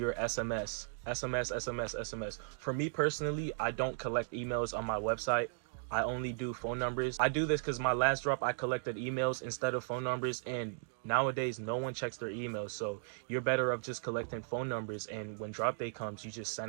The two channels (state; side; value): silent; left; digital silence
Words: SMS. SMS. For me personally, I don't collect emails on my website. I only do phone numbers. I do this because my last drop, I collected emails instead of phone numbers, and nowadays no one checks their emails. So you're better off just collecting phone numbers, and when drop day comes, you just